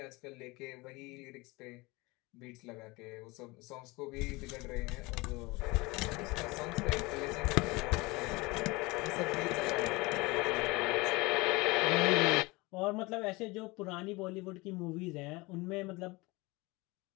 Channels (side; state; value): right; quieter; 23.8 dB